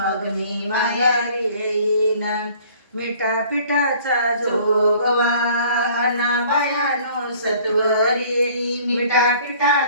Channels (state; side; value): inverted; both; correlation -0.53